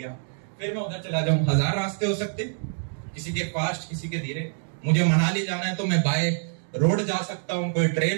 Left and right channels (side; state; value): left; silent; digital silence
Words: फिर मैं उधर चला जाऊं। 1000 रास्ते हो सकते, किसी के फास्ट, किसी के धीरे। मुझे मनाली जाना है तो मैं बाय रोड जा सकता हूं, कोई